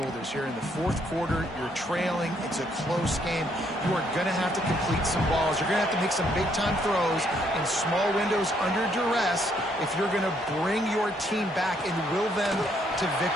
here in the fourth quarter. You're trailing. It's a close game. You are going to have to complete some balls. You're going to have to make some big-time throws in small windows under duress if you're going to bring your team back and will them to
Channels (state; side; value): normal; both; correlation 0.70